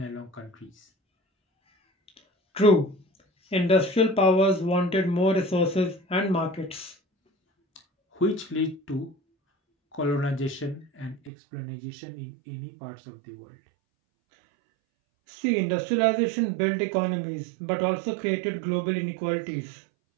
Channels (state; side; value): drops out; left; at 11.3 s